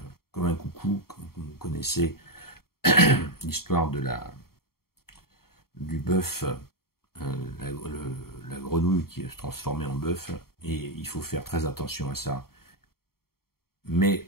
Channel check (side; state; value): right; late; 0.94 ms